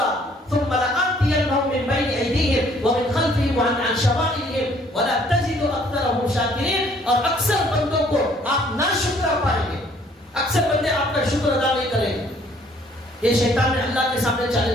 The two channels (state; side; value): normal; both; correlation 0.61